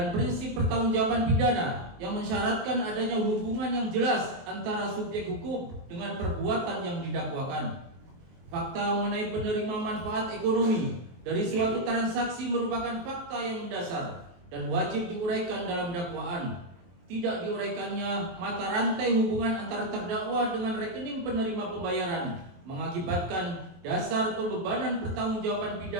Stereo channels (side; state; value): left; late; 23 ms